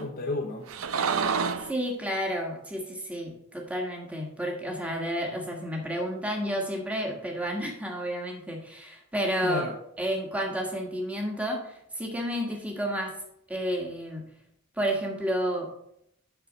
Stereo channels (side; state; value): both; normal; correlation 0.42